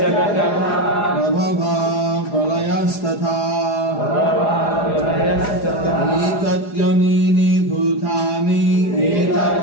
Prabhava Pralayas Tata Etat Yonini Bhutani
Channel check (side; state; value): right; late; 4.9 ms